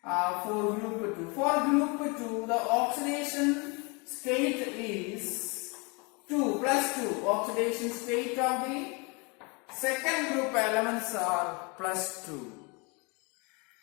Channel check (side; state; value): right; quieter; 30.3 dB